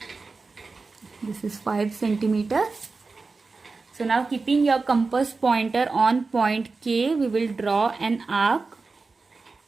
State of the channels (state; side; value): quieter; left; 4.0 dB